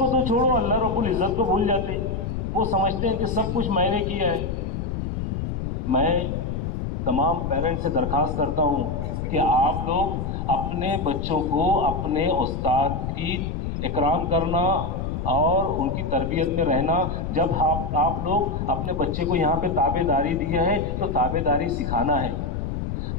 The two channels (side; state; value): left; noise; rumble, 3 dB below the sound